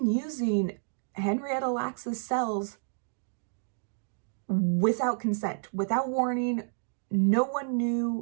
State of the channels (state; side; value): silent; left; digital silence